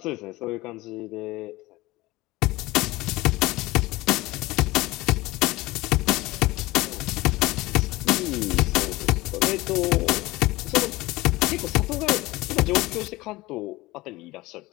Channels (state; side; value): quieter; right; 19.9 dB